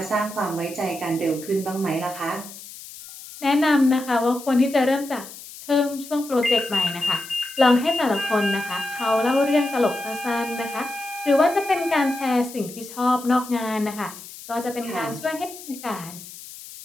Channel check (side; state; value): left; noise; hiss, 15 dB below the sound